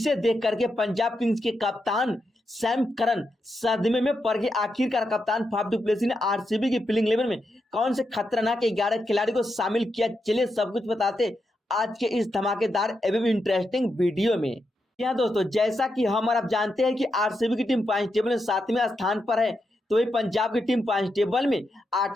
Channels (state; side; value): normal; both; correlation 0.85